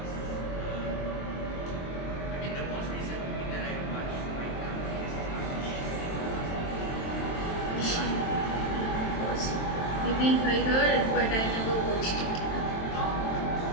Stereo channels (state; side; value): late; right; 23 ms